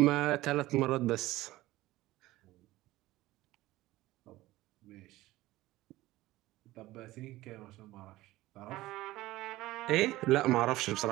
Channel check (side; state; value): left; quieter; 17.5 dB